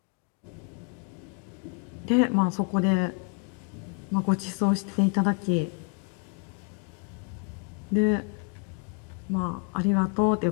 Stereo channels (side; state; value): right; quieter; 35.5 dB